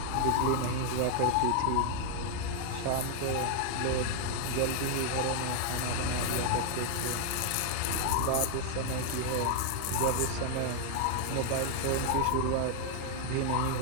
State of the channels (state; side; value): different; both; correlation 0.00